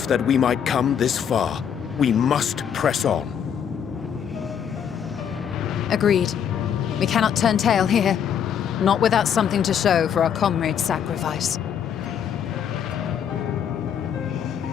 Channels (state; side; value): quieter; right; 8.3 dB